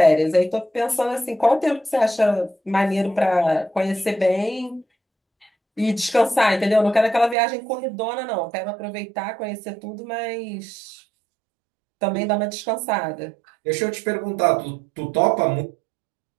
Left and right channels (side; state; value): left; drops out; at 7.4 s